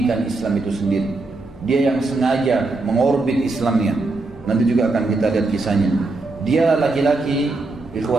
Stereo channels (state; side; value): quieter; left; 3.3 dB